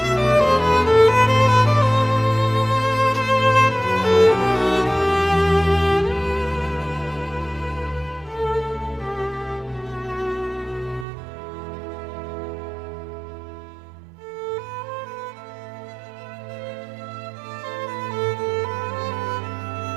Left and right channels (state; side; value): drops out; left; at 11.1 s